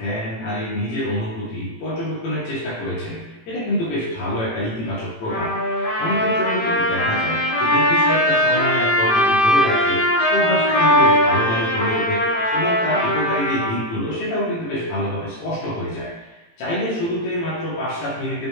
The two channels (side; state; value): right; late; 18 ms